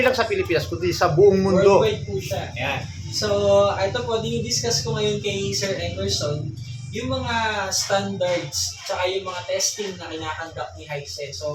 sa Pilipinas, kundi sa buong mundo. Worldwide po siya. Ayan. So, ito po, dinidiscuss ko ngayon kay Sir Emerson yung mga standards tsaka yung mga testing na kinakandak ni Hisense.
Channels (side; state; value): both; identical; correlation 1.00